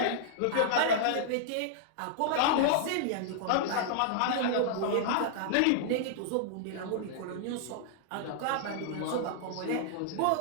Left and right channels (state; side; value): different; both; correlation -0.01